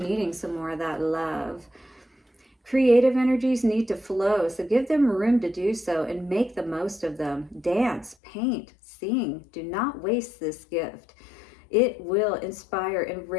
some more of that love. Creative energies need to flow, so give them room to do so and make the most of them. Dance, paint, sing. Do not waste this gift. It will inspire and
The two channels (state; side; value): drops out; right; at 8.2 s